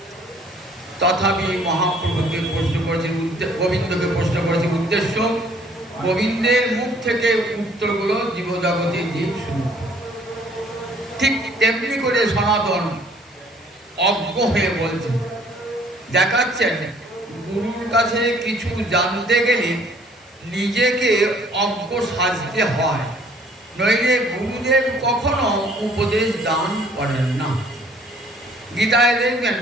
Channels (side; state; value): both; normal; correlation 0.58